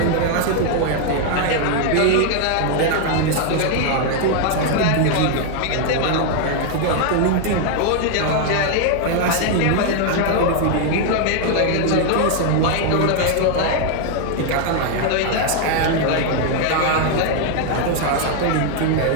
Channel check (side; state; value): both; different; correlation 0.00